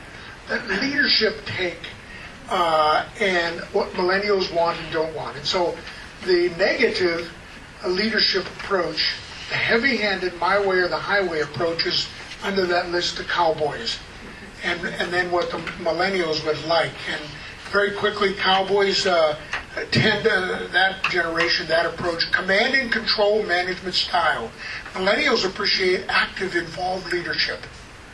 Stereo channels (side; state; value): both; identical; correlation 1.00